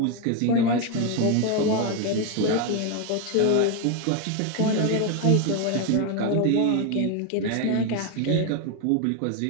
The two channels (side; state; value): both; different; correlation 0.01